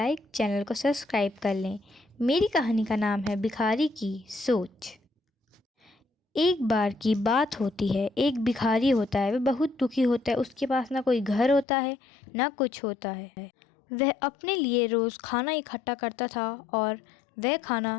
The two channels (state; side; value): drops out; right; at 11.7 s